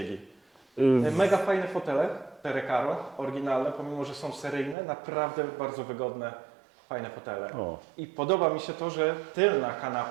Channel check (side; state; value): left; drops out; at 4.8 s